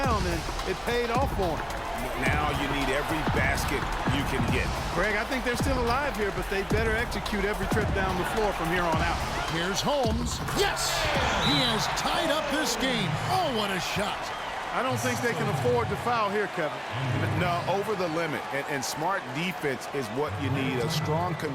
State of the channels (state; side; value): identical; both; correlation 1.00